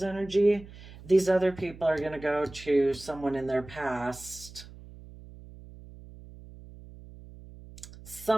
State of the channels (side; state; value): right; noise; hum, 18 dB below the sound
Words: energy, these other people are going to go to someone in their past.